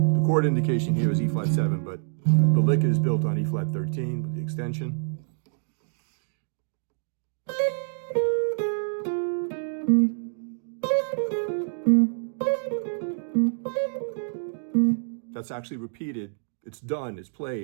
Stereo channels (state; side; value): silent; left; digital silence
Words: The chord indication here is E-flat 7, but the lick is built on E-flat 13 with the extension. That's actually repeated. It's done. It's